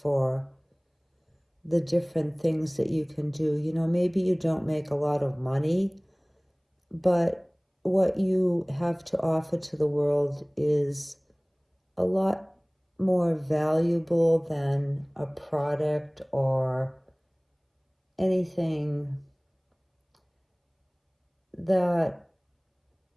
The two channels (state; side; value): identical; both; correlation 1.00